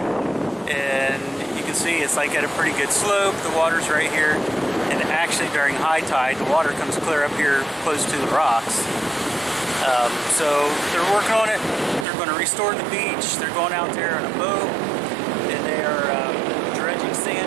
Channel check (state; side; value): drops out; left; at 12.1 s